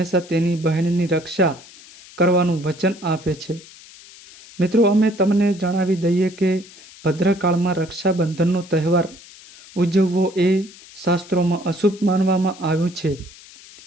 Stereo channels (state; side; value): noise; left; hiss, 21 dB below the sound